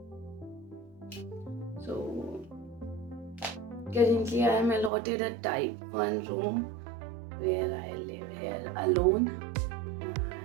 So currently I am allotted a type 1 room where I live here alone.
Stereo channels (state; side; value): drops out; left; at 4.9 s